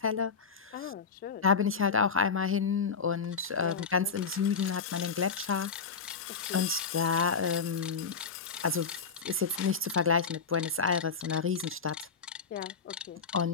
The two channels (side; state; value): right; quieter; 5.5 dB